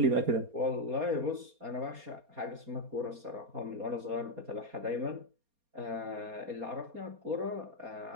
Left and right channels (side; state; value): left; late; 4.2 ms